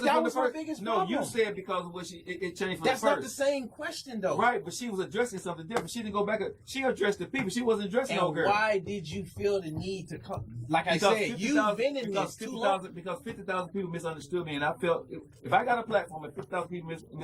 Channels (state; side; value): identical; both; correlation 1.00